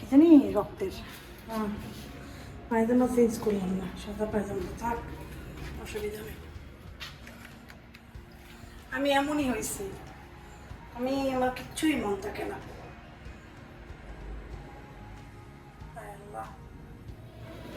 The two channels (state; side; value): identical; both; correlation 1.00